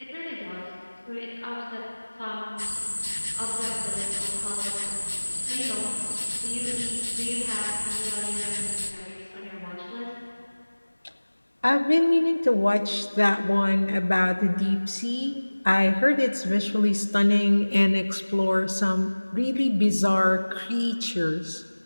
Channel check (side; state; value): both; inverted; correlation -1.00